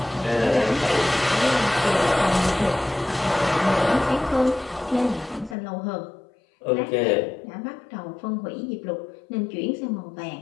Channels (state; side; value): drops out; right; at 5.6 s